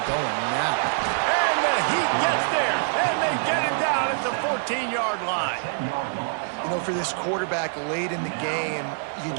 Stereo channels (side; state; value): left; silent; digital silence